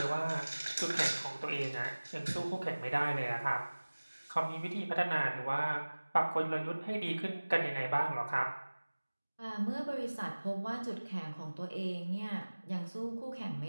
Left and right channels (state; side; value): inverted; both; correlation -1.00